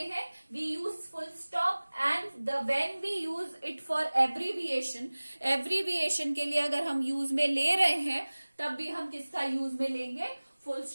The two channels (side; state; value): both; inverted; correlation -1.00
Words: we use full stop. And when we use it for abbreviation, abbreviation के लिए अगर हम यूज में ले रहे हैं तब भी हम किसका यूज में लेंगे, फुल